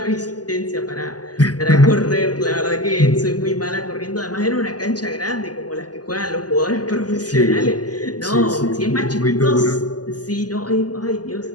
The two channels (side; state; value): right; late; 0.68 ms